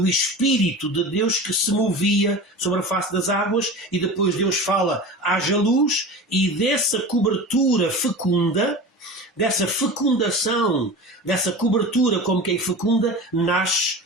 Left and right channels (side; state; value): both; normal; correlation 0.32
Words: Espírito de Deus que se movia sobre a face das águas, e depois Deus fala, haja luz, e dessa cobertura fecunda, dessa fecundação, dessa cobertura como quem fecunda, nasce,